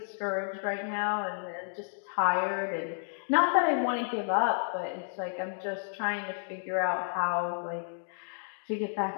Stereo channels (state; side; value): silent; right; digital silence